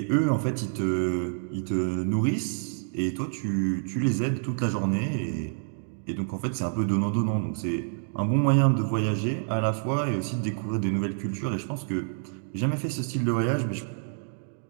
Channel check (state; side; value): silent; left; digital silence